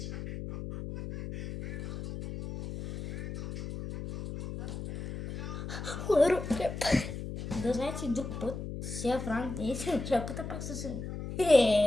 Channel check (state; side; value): noise; left; hum, 7 dB below the sound